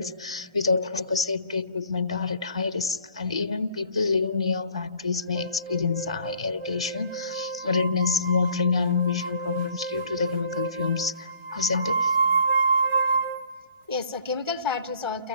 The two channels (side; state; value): left; late; 1.3 ms